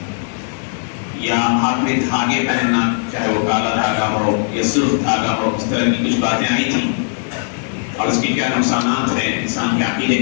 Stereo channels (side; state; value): right; silent; digital silence